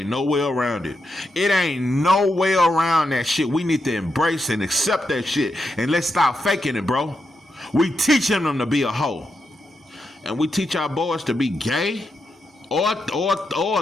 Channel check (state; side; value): normal; both; correlation 0.84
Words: no way around it. It ain't no way around that shit. We need to embrace and accept that shit. And let's stop faking it, bro. We teaching them to be a hoe. And we teach our boys to be gay or